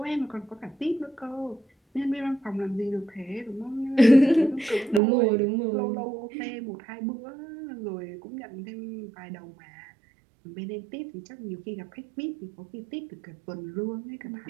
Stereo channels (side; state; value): left; drops out; at 5.0 s